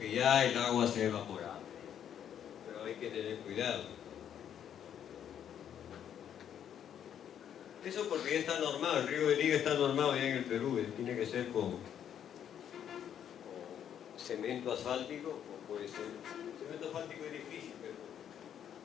ya el agua se ha evaporado. Hay que tener cuidado. Eso porque ya está normado, el riego de liga está normado ya en el Perú, tiene que ser con cemento asfáltico, o puede ser, cemento asfáltico es difícil,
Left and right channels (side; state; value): right; quieter; 9.4 dB